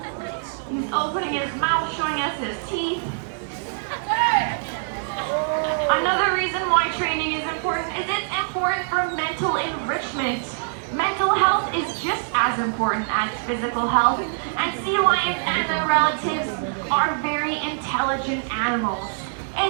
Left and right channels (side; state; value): left; silent; digital silence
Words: He's opening his mouth, showing us his teeth. Another reason why training is important is it's important for mental enrichment. Mental health is just as important as physical health, and sea lions and their relatives are very intelligent animals.